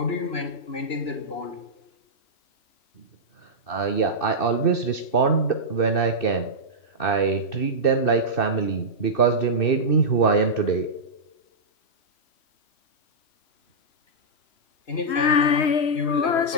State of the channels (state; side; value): late; right; 2.6 ms